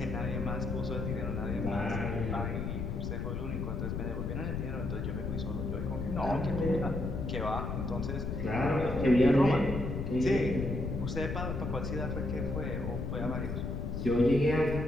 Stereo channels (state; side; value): noise; left; rumble, 3 dB below the sound